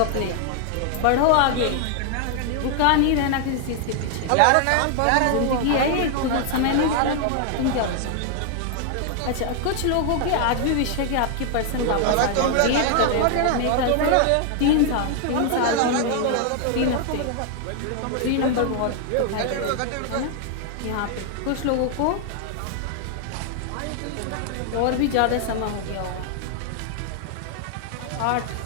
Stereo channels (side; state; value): both; different; correlation 0.00